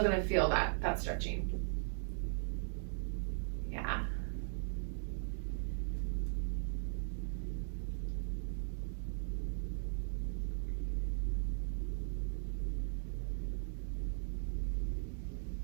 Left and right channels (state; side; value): silent; left; digital silence